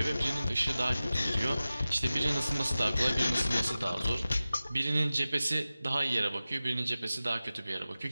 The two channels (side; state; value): both; inverted; correlation -0.95